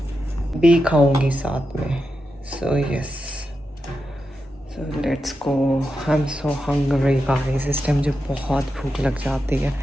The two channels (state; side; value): normal; both; correlation 0.88